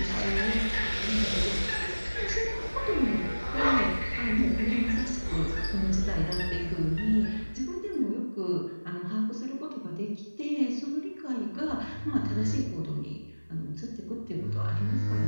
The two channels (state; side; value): inverted; both; correlation -1.00